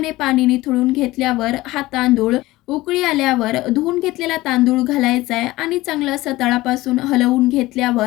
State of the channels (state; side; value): quieter; right; 18.3 dB